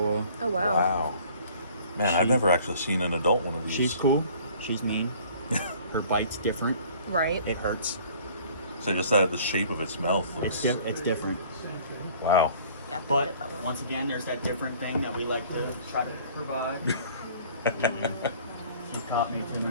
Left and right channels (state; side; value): inverted; both; correlation -0.52